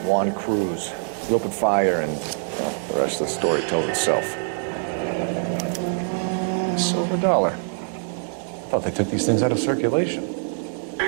Juan Cruz. He opened fire and, well, the rest of the story tells itself. Silver dollar. I thought they took these things out of circulation.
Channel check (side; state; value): left; silent; digital silence